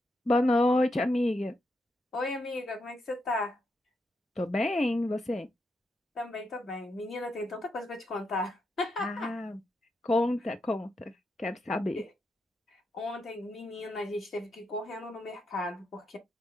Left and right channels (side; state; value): both; normal; correlation 0.83